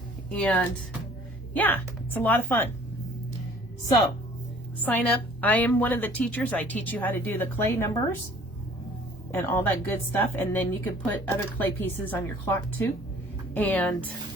And yeah, it's a lot of fun. So sign up. I am one of the teachers. I teach you how to do the clay numbers and all that good stuff. And then you can put other clay pieces on your clock too. And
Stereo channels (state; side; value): normal; both; correlation 0.52